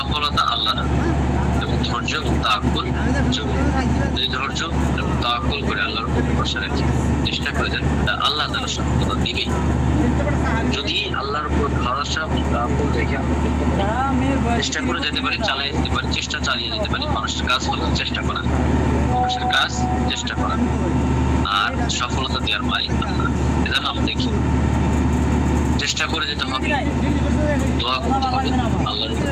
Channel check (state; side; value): identical; both; correlation 1.00